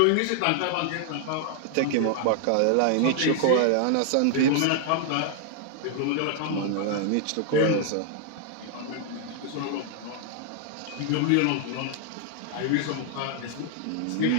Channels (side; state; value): both; different; correlation 0.00